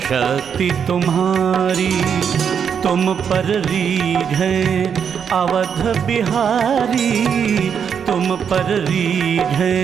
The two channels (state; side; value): quieter; left; 7.4 dB